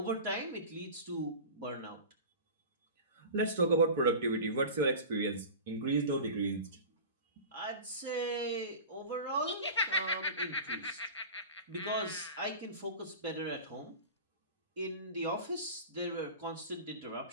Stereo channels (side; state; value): both; inverted; correlation -0.33